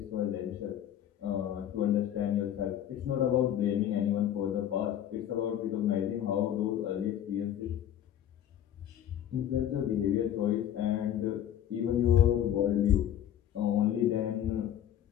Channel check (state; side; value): quieter; right; 10.6 dB